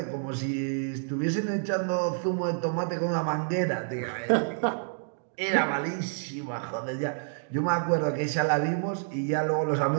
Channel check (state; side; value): silent; left; digital silence